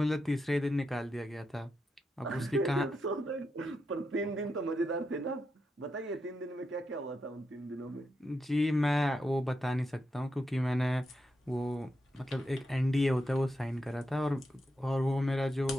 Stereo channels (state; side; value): normal; both; correlation 0.85